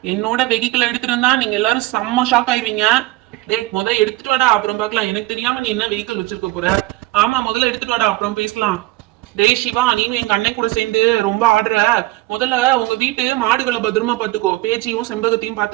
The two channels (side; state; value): left; quieter; 18.9 dB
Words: என்னோட வெஹிக்கிள் எடுத்துட்டு வந்தா நீங்க எல்லாரும் செம்ம ஷாக் ஆயிருவீங்க. டேய் முத எடுத்துட்டு வாடா, அப்புறம் பார்க்கலாம். எனக்கு தெரியாம நீ என்ன வெஹிக்கிள் வச்சிருக்க போற? ஆமா முதல்ல எடுத்துட்டு வாடா, அப்புறம் பேசலாம். டேய் சிவா, நீனும் எங்க அண்ணன் கூட சேர்ந்து ரொம்ப ஆடுற. முதல்ல உங்க வீட்டு மாடுகளை பத்திரமா பாத்துக்கோ. பேச்சியும் செம்பகத்தையும்